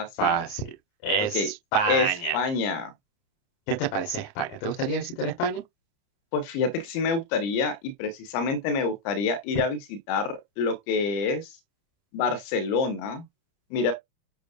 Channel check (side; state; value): right; late; 30 ms